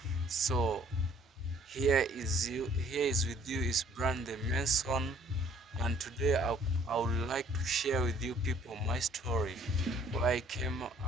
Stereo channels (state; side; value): normal; both; correlation 0.59